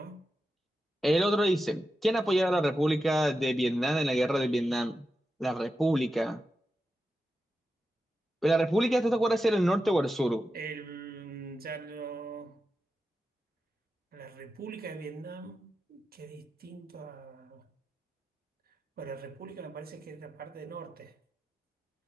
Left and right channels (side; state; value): both; normal; correlation 0.90